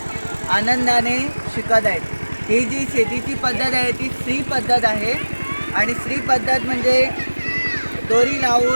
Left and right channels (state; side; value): inverted; both; correlation -1.00